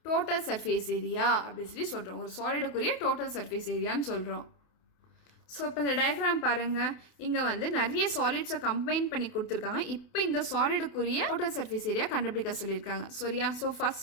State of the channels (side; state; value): right; late; 28 ms